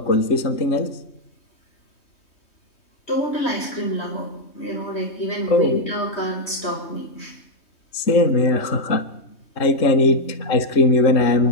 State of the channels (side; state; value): right; late; 3.2 ms